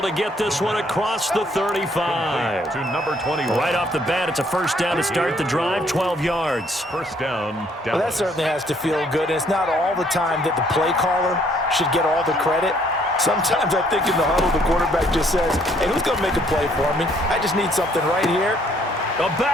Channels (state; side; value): normal; both; correlation 0.65